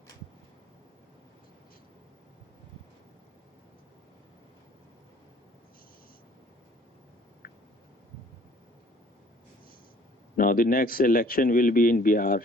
Now, the next election will be in Bihar.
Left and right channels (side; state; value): both; normal; correlation 0.57